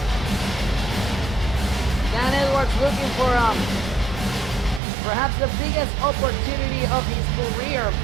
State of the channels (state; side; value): drops out; left; at 4.8 s